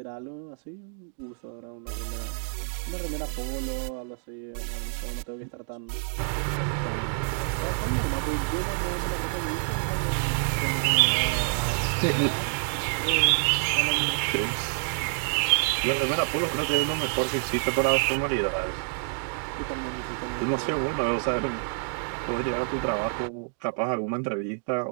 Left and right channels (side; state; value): left; silent; digital silence